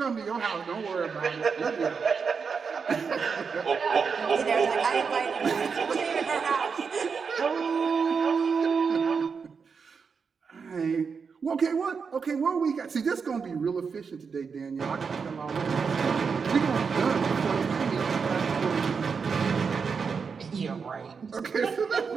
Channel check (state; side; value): quieter; left; 5.7 dB